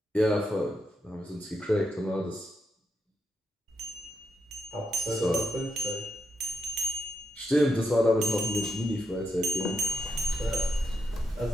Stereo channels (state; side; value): normal; both; correlation 0.82